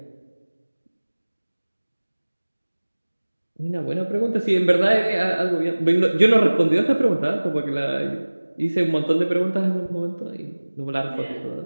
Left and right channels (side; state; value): both; inverted; correlation -1.00